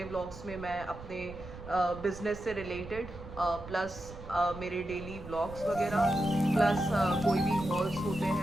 व्लॉग्स में मैं अपने बिजनेस से रिलेटेड प्लस मेरे डेली व्लॉग्स वगैरह, प्लस कोई भी हॉल्स होते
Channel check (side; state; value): right; noise; rumble, 14 dB below the sound